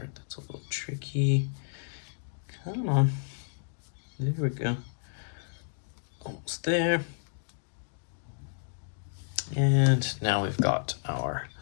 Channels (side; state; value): right; silent; digital silence